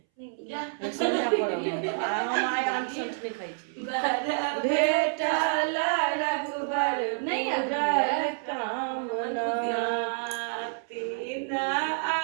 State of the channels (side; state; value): left; silent; 59 dB below the other